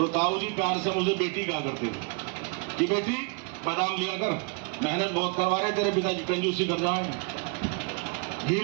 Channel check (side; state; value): left; quieter; 32.6 dB